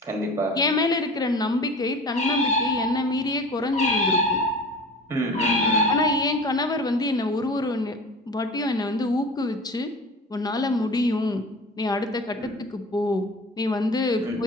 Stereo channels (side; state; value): both; normal; correlation 0.38